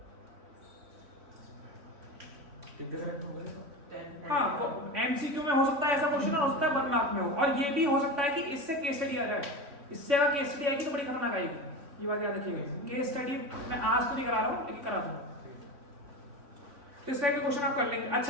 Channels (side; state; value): left; late; 3.6 ms